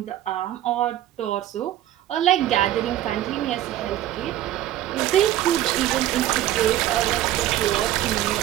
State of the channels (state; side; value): quieter; left; 13.2 dB